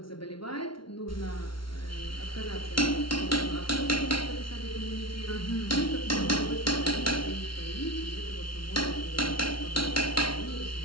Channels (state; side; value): late; right; 0.74 ms